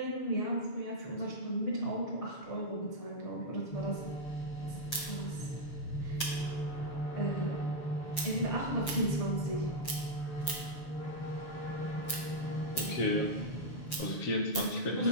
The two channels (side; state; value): right; late; 6.8 ms